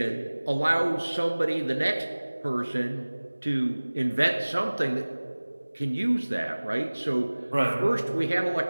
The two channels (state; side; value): inverted; both; correlation -1.00